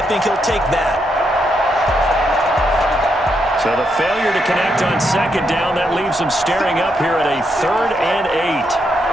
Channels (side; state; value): both; normal; correlation 0.80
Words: think he'll take that. So the failure to connect on 2nd down, that leaves him staring up here at a 3rd and 8.